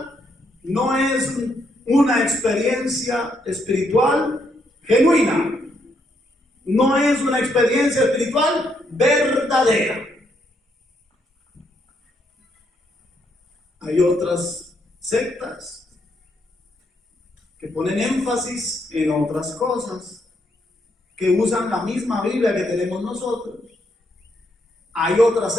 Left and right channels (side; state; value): both; normal; correlation 0.75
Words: no es una experiencia espiritual genuina. No es una experiencia espiritual verdadera. Hay otras sectas que ponen énfasis en otras cosas, que usan la misma Biblia que tenemos nosotros. Hay otras